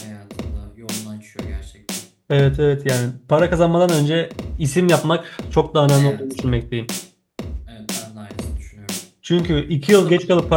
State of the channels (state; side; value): identical; both; correlation 1.00